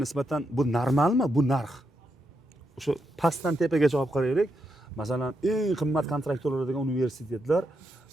nisbatan bu normalmi? Bu narx. O'sha pastdan tepagacha olib qaraylik. Masalan, eng qimmat kontrakt to'laydigan universitetlar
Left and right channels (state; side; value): normal; both; correlation 0.82